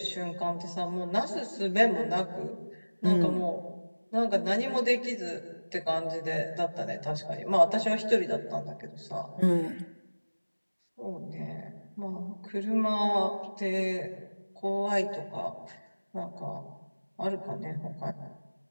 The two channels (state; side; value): inverted; both; correlation -1.00